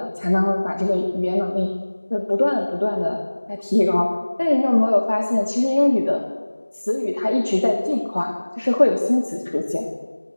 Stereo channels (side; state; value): both; inverted; correlation -1.00